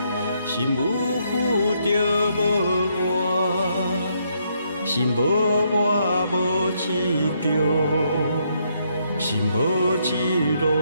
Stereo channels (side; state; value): both; inverted; correlation -0.74